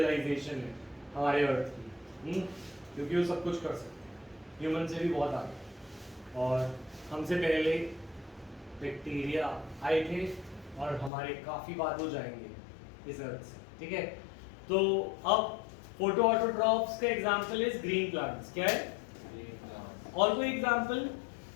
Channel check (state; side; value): drops out; right; at 11.1 s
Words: है हमारे अर्थ की, क्योंकि वो सब कुछ कर सकते, ह्यूमन से भी बहुत आगे, और हमसे पहले बैक्टीरिया आए थे और हमारे काफी बाद हो जाएंगे इस अर्थ से, ठीक है। तो अब फोटो ऑटोट्रॉफ्स का एग्जांपल इज ग्रीन प्लांट्स। क्या है? और कोई एग्जांपल